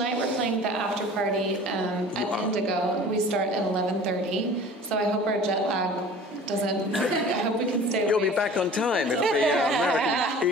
we're playing the after party at Indigo. We start at 11:30. So I hope our jet lag doesn't. I hope we can stay. You'll awake. be back on time. It'll be American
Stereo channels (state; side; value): normal; both; correlation 0.44